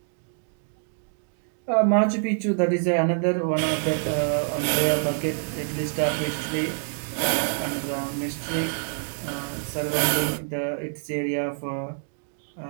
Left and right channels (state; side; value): silent; left; 61 dB below the other